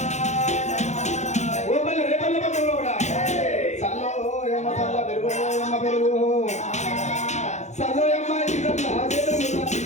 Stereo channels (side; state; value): right; late; 0.33 ms